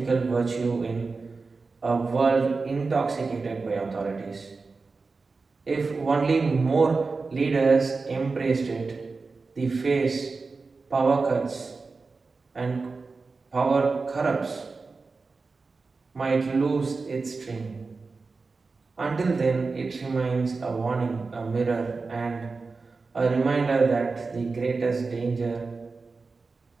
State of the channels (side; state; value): left; quieter; 4.2 dB